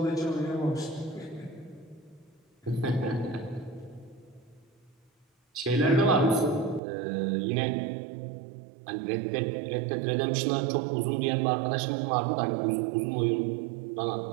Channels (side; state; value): left; drops out; at 6.8 s